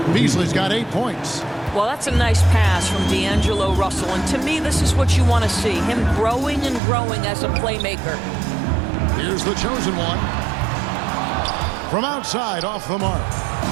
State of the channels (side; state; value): left; drops out; at 6.8 s